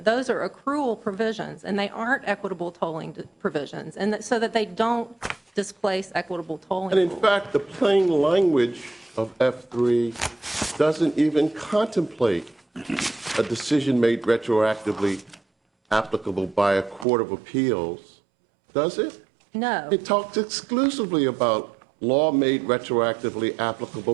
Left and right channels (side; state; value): left; drops out; at 17.1 s